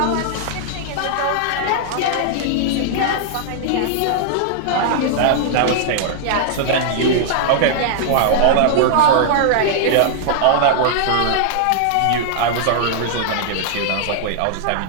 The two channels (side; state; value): both; different; correlation -0.01